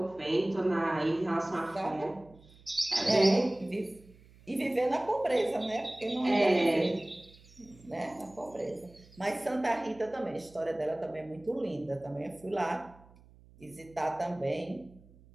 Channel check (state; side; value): noise; right; hum, 25 dB below the sound